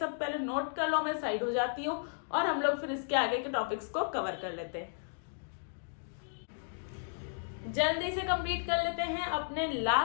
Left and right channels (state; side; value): silent; right; digital silence